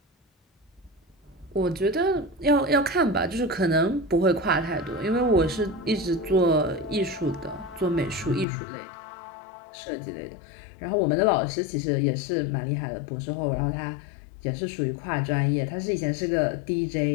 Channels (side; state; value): right; drops out; at 8.5 s